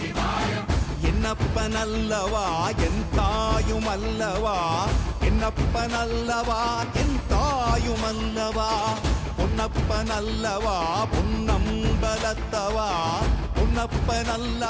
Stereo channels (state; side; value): identical; both; correlation 1.00